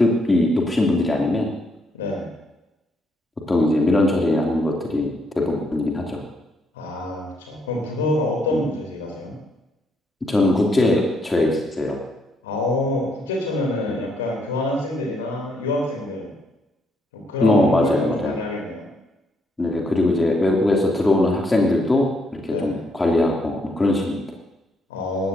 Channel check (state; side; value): normal; both; correlation 0.74